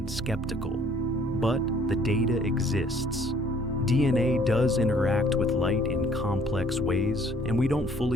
skeptical, but the data exists. DNA does interact with light in complex ways, and we don't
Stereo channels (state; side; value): normal; both; correlation 0.59